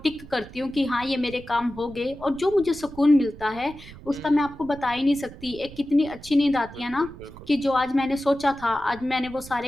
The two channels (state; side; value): noise; right; rumble, 17 dB below the sound